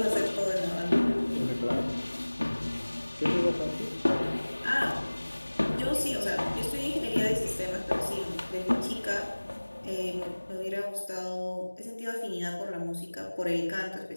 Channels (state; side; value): inverted; both; correlation -1.00